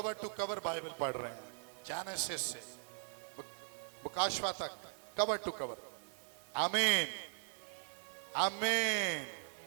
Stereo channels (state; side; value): silent; left; digital silence